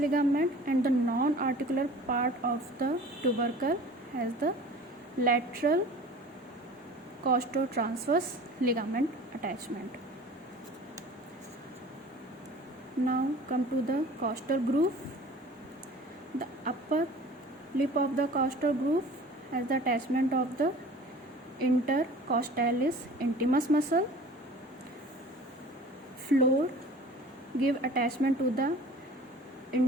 and the non-articular part of the tubercle has the lateral costotransverse ligament attachment. Now come to the costal groove. The upper lip of the costal groove has the attachment of the intercostalis intimus muscle. Floor give attachment to the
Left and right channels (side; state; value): both; normal; correlation 0.44